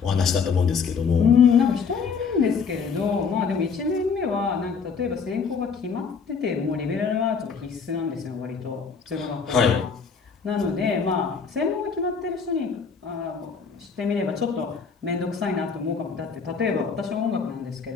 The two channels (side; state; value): right; quieter; 5.7 dB